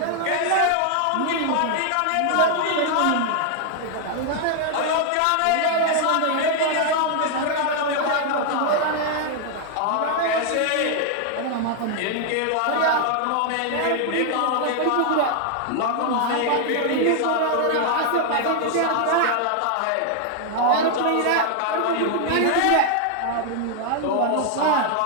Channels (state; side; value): different; both; correlation 0.00